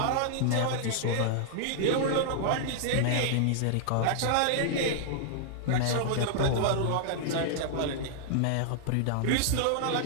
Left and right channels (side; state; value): both; different; correlation -0.01